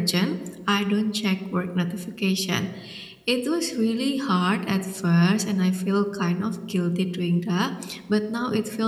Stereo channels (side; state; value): both; identical; correlation 1.00